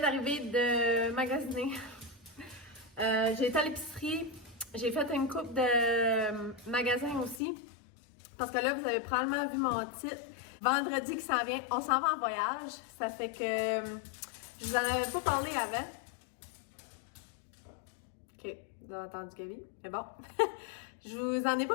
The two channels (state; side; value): drops out; right; at 7.4 s